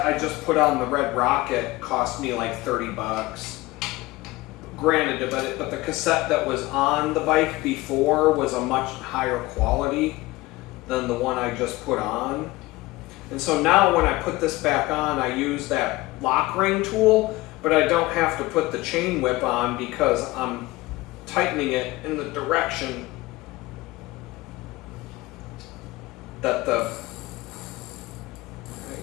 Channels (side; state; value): right; quieter; 19.9 dB